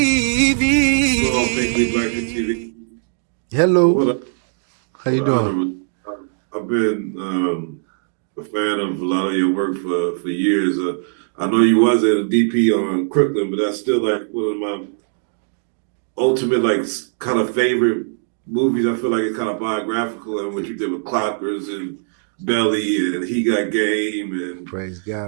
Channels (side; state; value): left; silent; digital silence